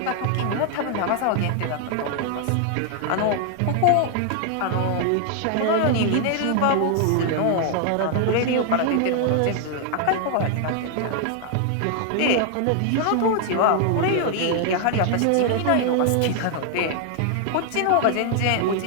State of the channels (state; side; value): different; both; correlation 0.00